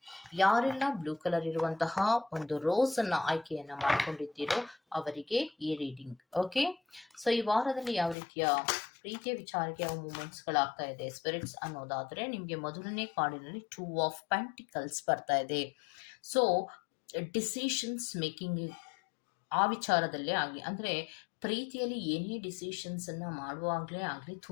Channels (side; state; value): right; drops out; at 8.2 s